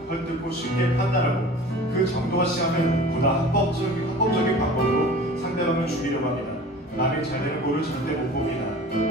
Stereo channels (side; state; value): both; normal; correlation 0.41